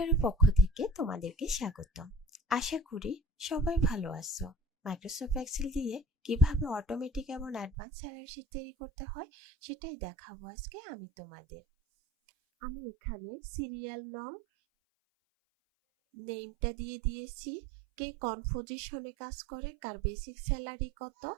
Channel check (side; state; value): left; drops out; at 7.7 s